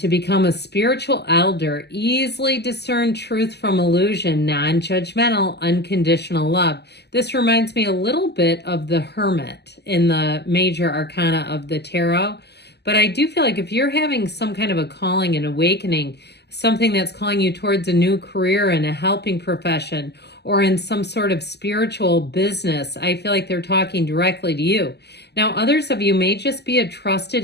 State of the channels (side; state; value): right; late; 0.49 ms